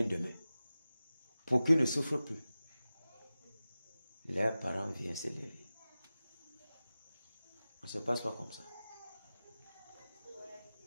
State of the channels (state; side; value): inverted; both; correlation -0.96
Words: demain, pour qu'ils ne souffrent plus. Leurs parents viennent s'élever. On ne se passe pas comme ça.